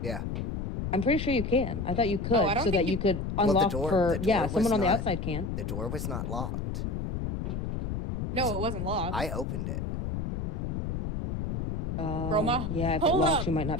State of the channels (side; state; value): left; noise; rumble, 2 dB below the sound